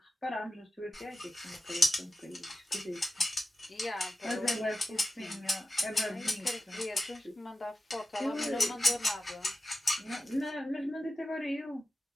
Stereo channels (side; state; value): both; normal; correlation 0.92